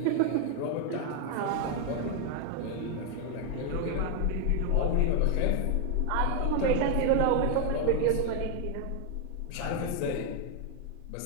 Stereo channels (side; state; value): both; different; correlation 0.00